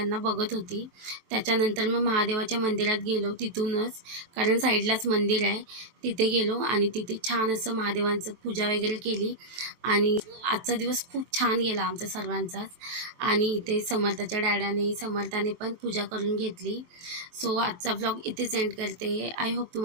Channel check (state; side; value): late; left; 24 ms